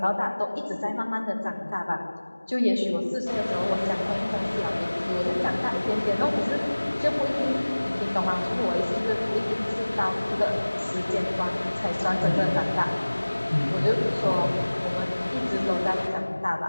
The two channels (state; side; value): inverted; both; correlation -1.00